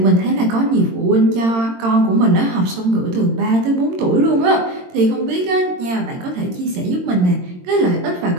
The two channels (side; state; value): left; late; 22 ms